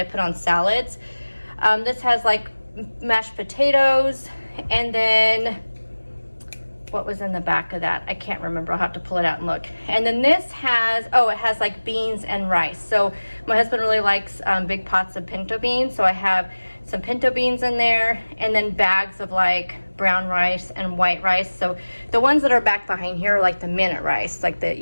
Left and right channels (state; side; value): inverted; both; correlation -1.00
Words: put on salads. This has like mashed potatoes, and then what was in the back of that? I can't remember. I'll have to pull it out and look. And then this has, oh, it has like beans and rice. So my husband really likes big pots of pinto beans. So I have some pinto beans in there, and then bags of like brown rice and white rice. So the ones that are back behind here are like the minute rice, like